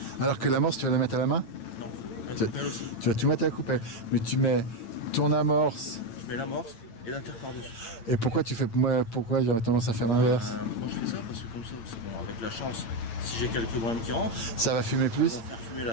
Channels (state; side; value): late; right; 8.7 ms